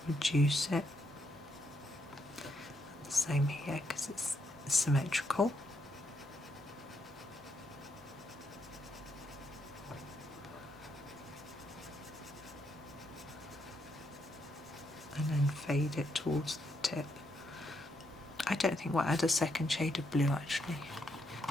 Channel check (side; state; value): both; normal; correlation 0.78